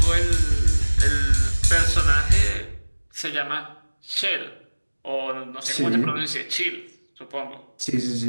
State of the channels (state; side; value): inverted; both; correlation -1.00